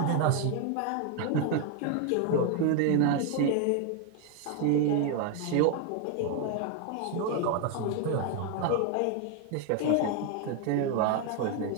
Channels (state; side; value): different; both; correlation 0.01